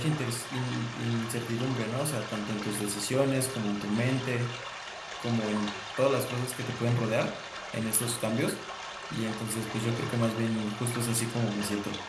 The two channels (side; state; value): both; identical; correlation 1.00